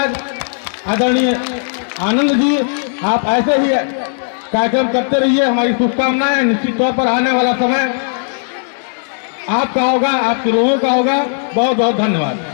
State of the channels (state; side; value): silent; right; digital silence